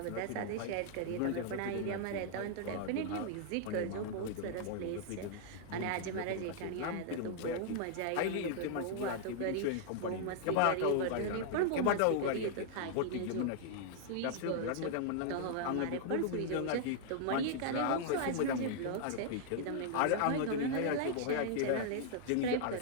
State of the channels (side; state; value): both; different; correlation -0.01